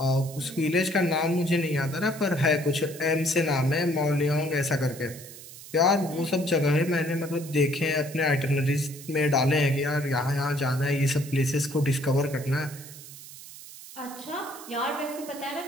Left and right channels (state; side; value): noise; right; hiss, 16 dB below the sound